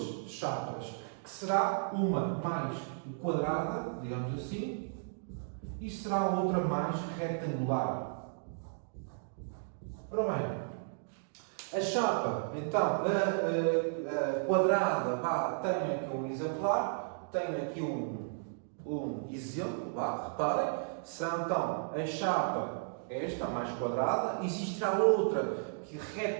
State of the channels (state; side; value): silent; left; digital silence